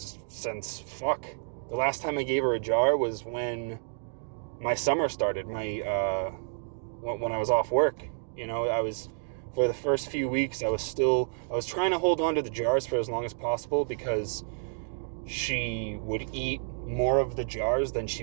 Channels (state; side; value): silent; left; digital silence